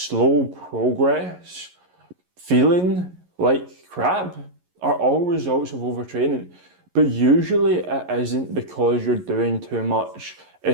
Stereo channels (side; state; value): left; late; 11 ms